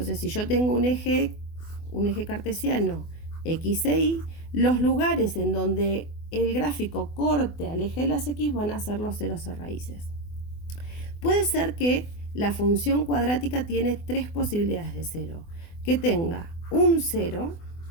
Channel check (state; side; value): late; right; 24 ms